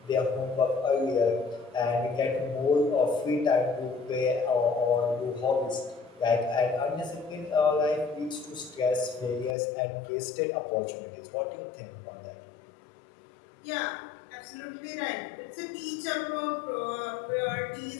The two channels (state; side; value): drops out; right; at 9.6 s